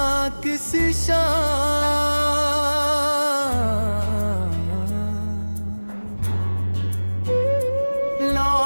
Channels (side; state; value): both; inverted; correlation -1.00